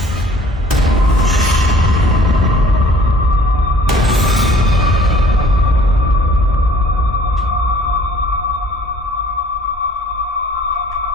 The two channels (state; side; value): normal; both; correlation 0.54